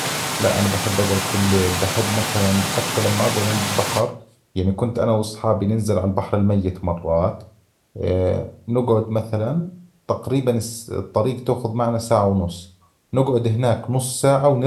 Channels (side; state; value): both; identical; correlation 1.00